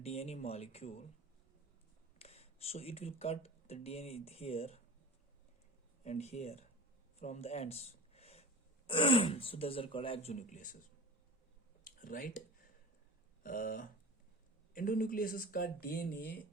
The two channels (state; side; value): normal; both; correlation 0.38